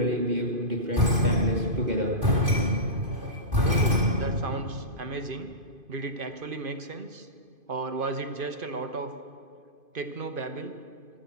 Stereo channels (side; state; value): left; late; 2.5 ms